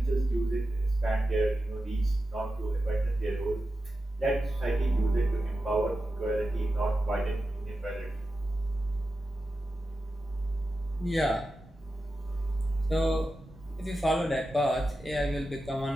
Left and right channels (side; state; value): both; normal; correlation 0.91